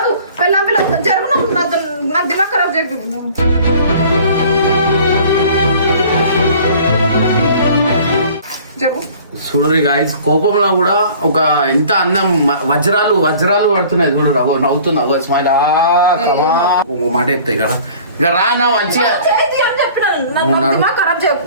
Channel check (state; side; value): inverted; both; correlation -0.49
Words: పిల్లం పిల్లలు జరుగును నా దిమాగ్ ఖరాబ్ చేయ. చూడరు గాయస్ కోపంలో కూడా ఒక ఎంత అందం వజ్రాలు వజ్రాలు పడుతున్నాయి చూడరు. నవ్వుతున్నావు స్మైల్ మాట చెప్తాయి కదా. ఇక రా నా మంచిగా